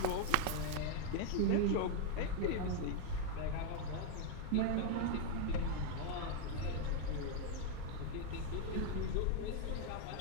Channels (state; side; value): different; both; correlation 0.00